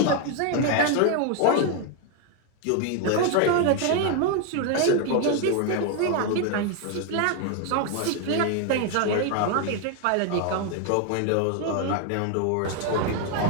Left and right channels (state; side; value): different; both; correlation 0.01